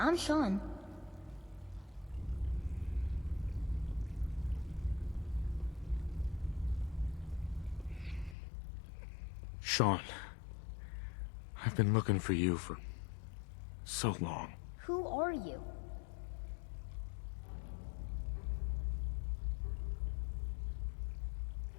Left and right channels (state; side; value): drops out; right; at 8.3 s